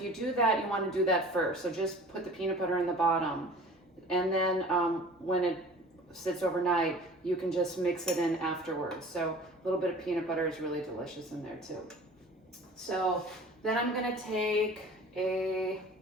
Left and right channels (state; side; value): normal; both; correlation 0.44